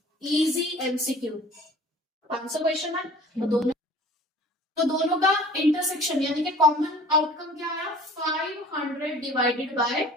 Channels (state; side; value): normal; both; correlation 0.47